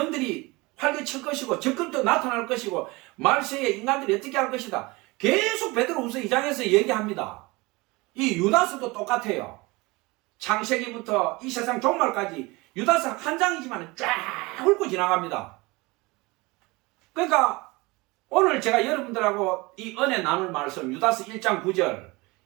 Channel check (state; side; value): quieter; left; 23.8 dB